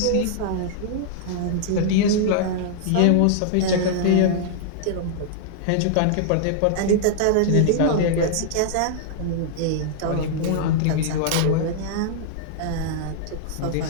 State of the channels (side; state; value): both; different; correlation -0.01